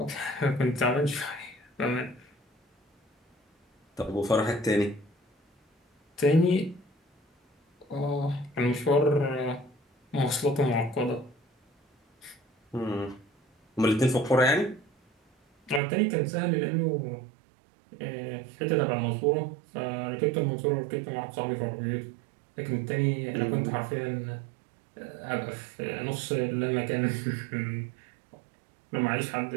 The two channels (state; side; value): drops out; left; at 15.8 s